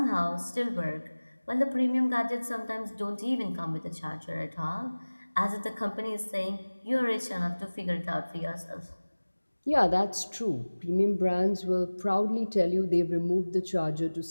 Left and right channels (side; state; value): both; inverted; correlation -1.00